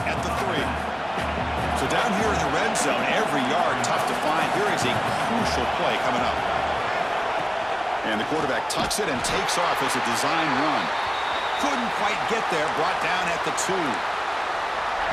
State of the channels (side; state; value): both; identical; correlation 1.00